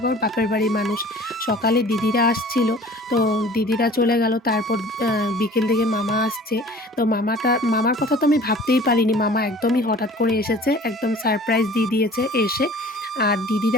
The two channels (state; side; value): normal; both; correlation 0.47